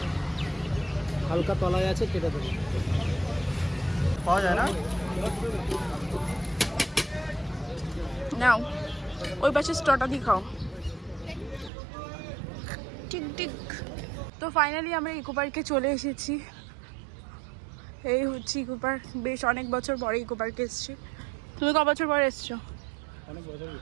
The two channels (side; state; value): left; drops out; at 11.7 s